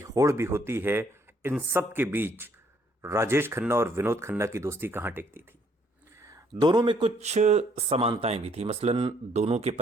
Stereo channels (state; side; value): normal; both; correlation 0.66